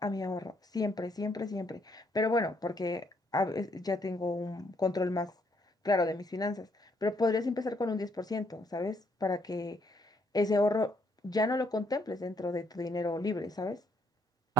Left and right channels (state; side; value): normal; both; correlation 0.72